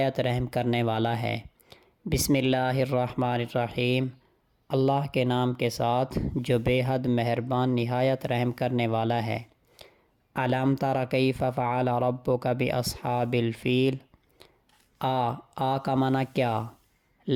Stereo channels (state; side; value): identical; both; correlation 1.00